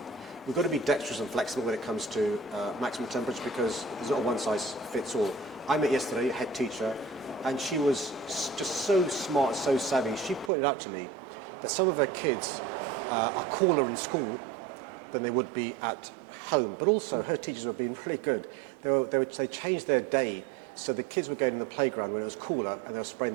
We've got to be dexterous and flexible when it comes to maximum temperature, because there's not a one-size-fits-all. I met yesterday a head teacher, and she was just so smart, so savvy. She pointed out to me that some of her kids are cooler in school than they would be at home. But also, her teachers were being really good. They changed their day, so the kids were going in the playground when it was cooler, and they were spraying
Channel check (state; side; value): drops out; left; at 10.5 s